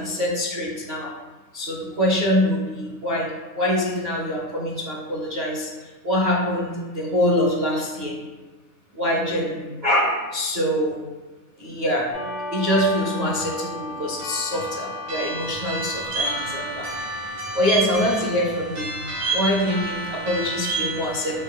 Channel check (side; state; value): left; late; 9.4 ms